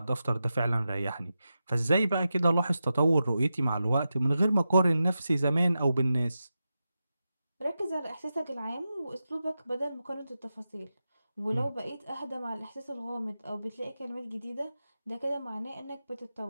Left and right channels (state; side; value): inverted; both; correlation -0.91